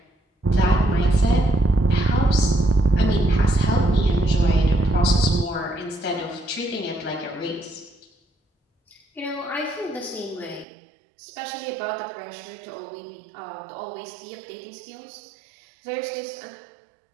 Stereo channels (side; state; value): left; drops out; at 10.7 s